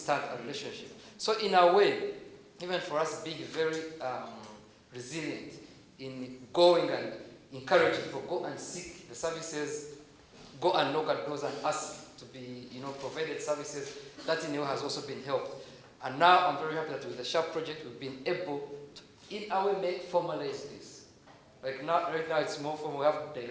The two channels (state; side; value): identical; both; correlation 1.00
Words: a relationship? So in a way, even for us being very resilient in going and encouraging people, go and seek the services go and knock at doors and ask to be, provided services. That in a way has also been helped. And now I'm very happy that with the Sharp Project, we've been able to, in our way, formalize this. Like right now it's more formal. We have